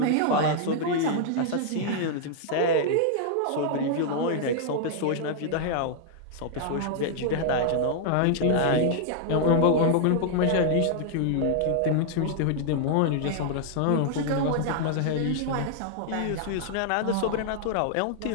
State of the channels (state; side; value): different; both; correlation -0.01